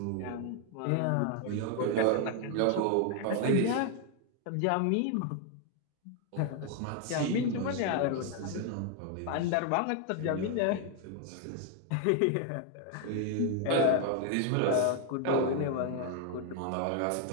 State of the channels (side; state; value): both; different; correlation 0.00